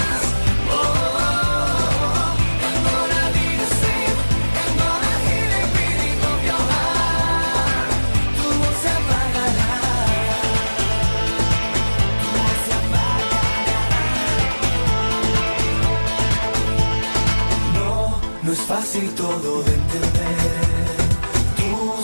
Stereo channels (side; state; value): both; inverted; correlation -1.00